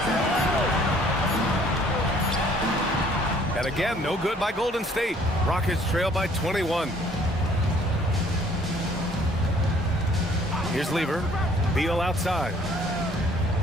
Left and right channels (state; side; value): normal; both; correlation 0.59